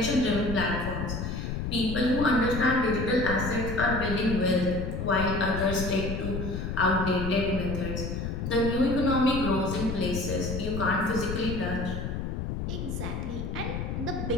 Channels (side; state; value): left; noise; rumble, 4 dB below the sound